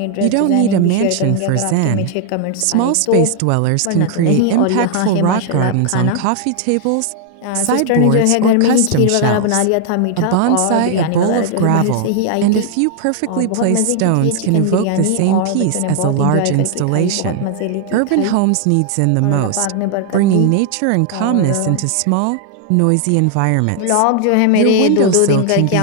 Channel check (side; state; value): both; different; correlation 0.00